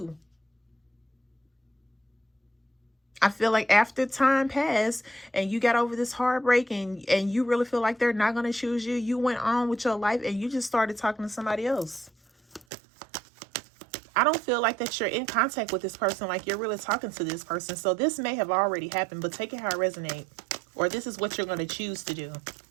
I feel like after time passed and you got over this heartbreak and you really feel like they're not going to choose you, you went on with your life and you just started talking to somebody else. I don't feel like that you're in contact with this person, like you're really talking to this person. So this may have already happened, but take it how it resonates. Or this is what you're going to choose to do.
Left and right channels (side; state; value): left; drops out; at 12.7 s